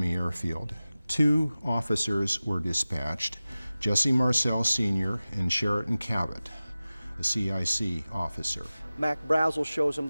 Airfield. 2 officers were dispatched, Jesse Marcel Sr. and Sheraton Cabot, a CIC officer. Mac Brazel shows him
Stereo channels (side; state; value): both; inverted; correlation -0.97